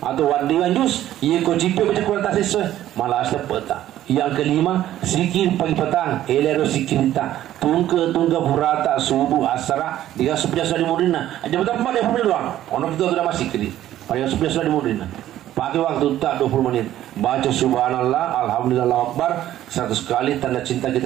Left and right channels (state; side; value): quieter; left; 12.9 dB